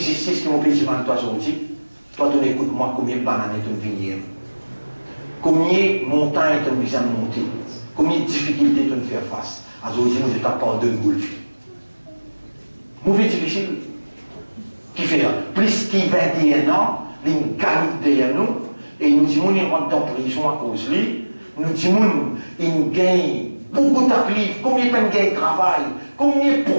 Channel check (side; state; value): both; inverted; correlation -1.00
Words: qui m'empêche de toi aujourd'hui? Toi, tu écoutes moi combien de bananes tu me venir, combien de montagnes tu me viens de monter, combien de difficultés tu me faire face. Aujourd'hui, nous, je t'apporte de golf. Mauvais difficile. Qui fait là? Plus plus de 21 ans, il gagne derrière nous, et nous disons qu'il rentre dans la prison à cause de lui. Nous disons qu'il gagne beaucoup de taklif, combien de gagne de travail, combien de